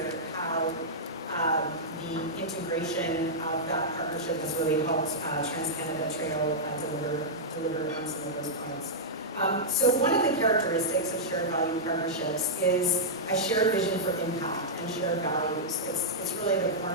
how the integration of that partnership has really helped Trans-Canada Trail deliver on some of those points. So one of the characteristics of shared value partnerships is a shared vision for impact and shared values. It's really the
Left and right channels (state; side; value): normal; both; correlation -0.09